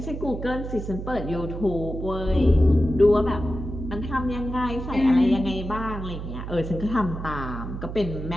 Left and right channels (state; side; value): noise; right; hum, 7 dB below the sound